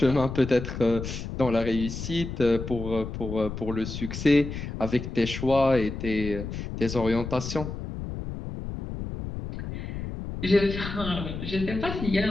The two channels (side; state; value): left; noise; rumble, 7 dB below the sound